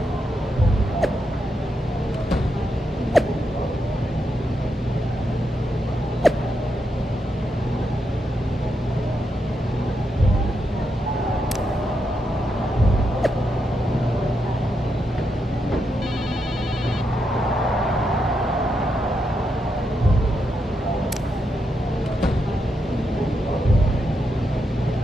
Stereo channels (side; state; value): both; normal; correlation 0.83